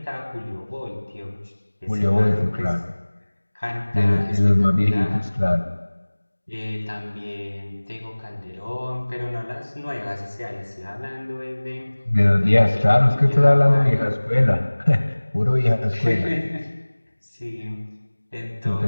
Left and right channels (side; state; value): both; inverted; correlation -1.00